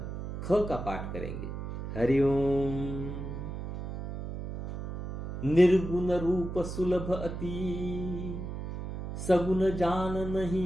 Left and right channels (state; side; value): noise; right; hum, 7 dB below the sound